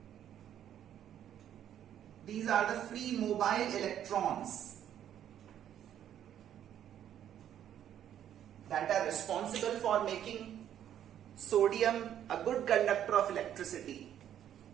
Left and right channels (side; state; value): left; quieter; 10.4 dB